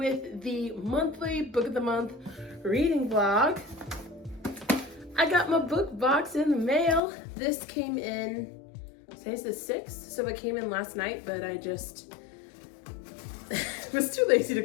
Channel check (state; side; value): drops out; right; at 7.0 s